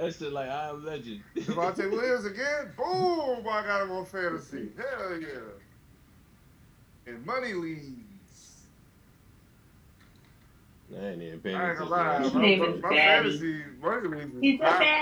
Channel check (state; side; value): identical; both; correlation 1.00